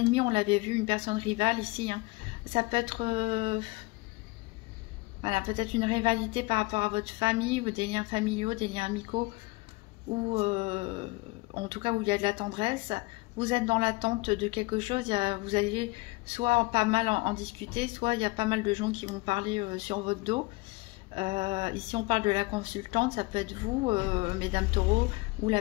on l'avait vu, une personne rivale ici. Hein. Ça peut être voilà, peut-être une rivalité par rapport à votre famille, ou des liens familiaux, des liens amicaux, ou en tout cas où il y a de la tendresse. Vous êtes dans l'attente de quelque chose. Vous allez soit pas mal en discuter, soit il y a pas mal de gens qui vont parler sur votre dos. Ici on parle de la consultante, ça peut être vous, mesdames taureaux, ou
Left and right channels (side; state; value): right; quieter; 24.2 dB